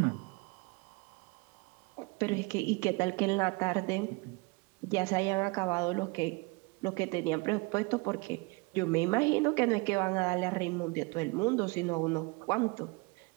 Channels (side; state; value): left; quieter; 27.7 dB